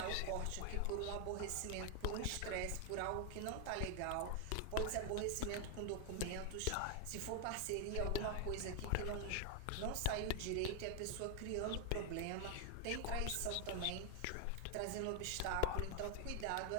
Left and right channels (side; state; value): both; different; correlation 0.00